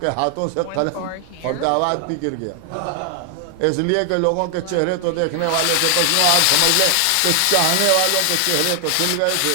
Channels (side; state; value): both; different; correlation 0.00